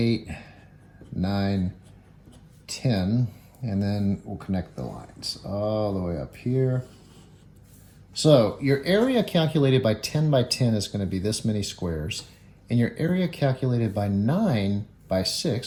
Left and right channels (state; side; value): identical; both; correlation 1.00